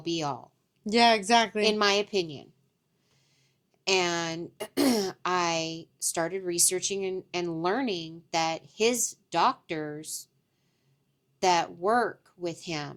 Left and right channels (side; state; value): both; identical; correlation 1.00